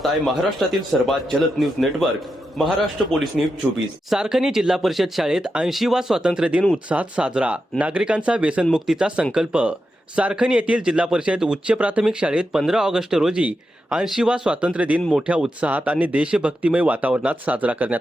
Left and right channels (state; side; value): normal; both; correlation 0.88